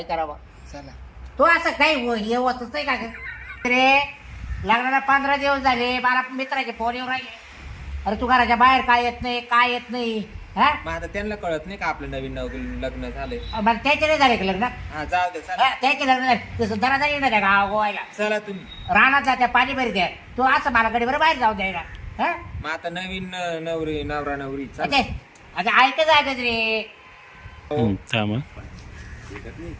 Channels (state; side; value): identical; both; correlation 1.00